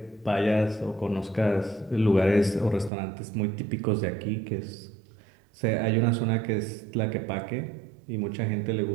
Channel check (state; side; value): drops out; left; at 2.9 s